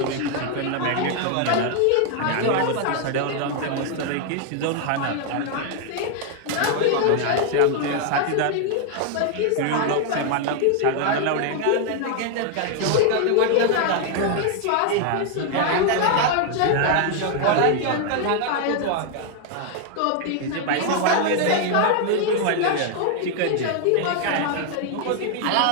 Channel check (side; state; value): both; different; correlation 0.00